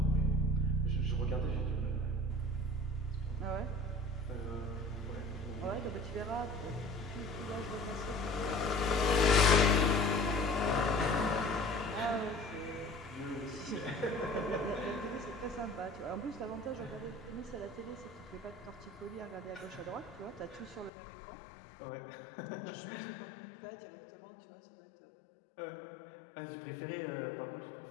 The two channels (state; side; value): drops out; right; at 20.9 s